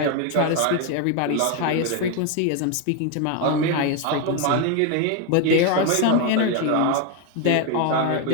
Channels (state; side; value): different; both; correlation 0.01